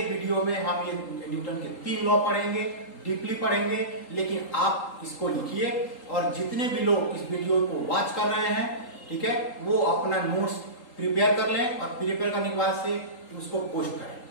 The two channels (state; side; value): late; right; 3.8 ms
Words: वीडियो में हम ये न्यूटन के 3 लॉ पढ़ेंगे, डीपली पढ़ेंगे, लेकिन आप इसको लिखिए और जितने भी लोग इस वीडियो को वॉच कर रहे हैं, ठीक है, वो अपना नोट्स प्रिपेयर कर लें और प्रिपेयर करने के बाद से उसको पोस्ट करें